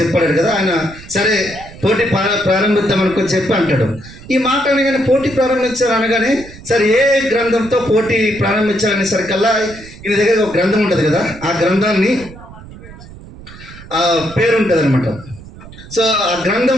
చెప్పాడు కదా ఆయన, సరే పోటీ ప్రారంభిద్దాం అనుకొని చెప్పి అంటాడు. ఈ మాట అనగానే పోటీ ప్రారంభించారు అనగానే, సరే ఏ గ్రంథంతో పోటీ ప్రారంభించాలనేసరికల్లా ఈయన దగ్గర ఒక గ్రంథం ఉంటుంది కదా, ఆ గ్రంథాన్ని పేరు ఉంటుంది అనమాట. సో ఆ గ్రంథం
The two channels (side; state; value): right; noise; rumble, 18 dB below the sound